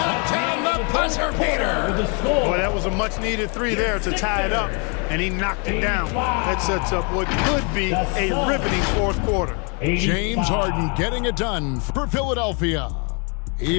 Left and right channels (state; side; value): quieter; right; 35.8 dB